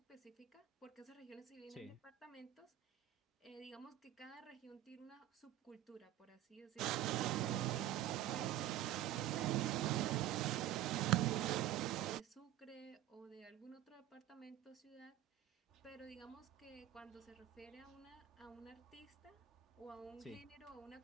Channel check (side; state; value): left; quieter; 13.2 dB